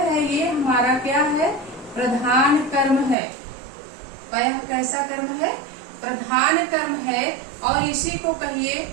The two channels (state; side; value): drops out; left; at 3.2 s